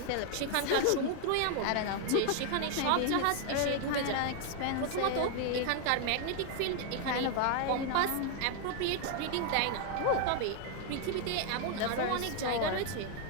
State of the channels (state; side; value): different; both; correlation 0.00